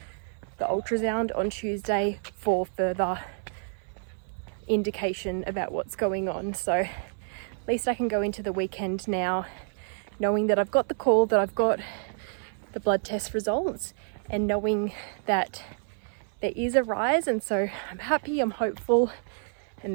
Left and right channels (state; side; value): silent; left; 59 dB below the other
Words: the ultrasound on Tuesday for further indication about what's going on. So at least I can go into the weekend now knowing that I've got the call, that I've got the blood test results, and knowing that there is a rise. And so I'm happy, I'm hopeful, and